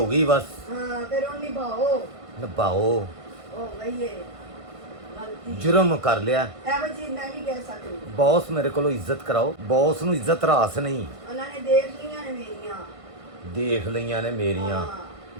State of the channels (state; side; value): late; left; 1.5 ms